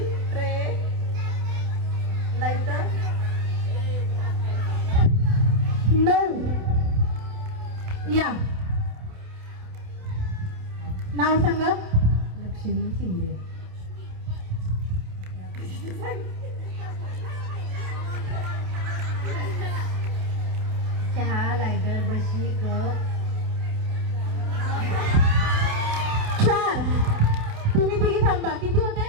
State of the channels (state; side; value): late; left; 28 ms